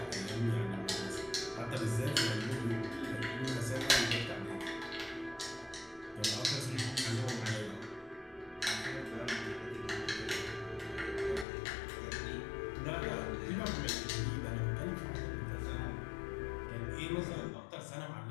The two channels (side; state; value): right; drops out; at 11.5 s